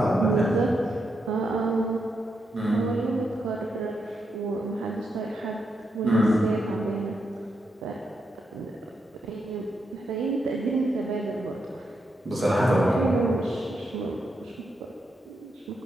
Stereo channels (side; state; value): both; normal; correlation 0.82